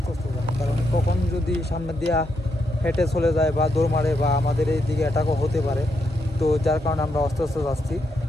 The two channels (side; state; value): both; normal; correlation 0.80